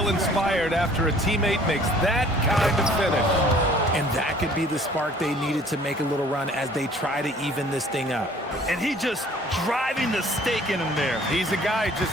inspired after a teammate makes that kind of finish. And that could be the spark they needed to make a little run as they try to even this thing up. And he just driving the stake in him there. He's a guy who just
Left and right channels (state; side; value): normal; both; correlation 0.54